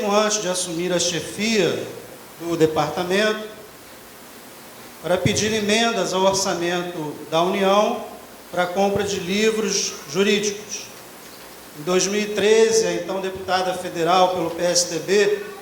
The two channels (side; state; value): both; identical; correlation 1.00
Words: antes de assumir a chefia do departamento, para pedir emendas ao orçamento da União para a compra de livros jurídicos. Em 2013, a então deputada federal pelo PSDB,